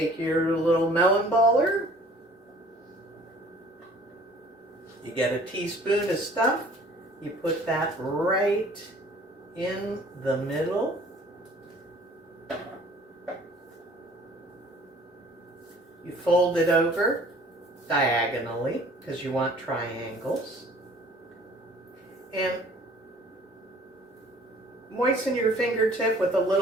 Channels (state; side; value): normal; both; correlation 0.52